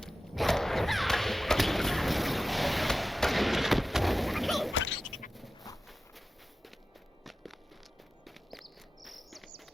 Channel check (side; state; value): both; normal; correlation 0.94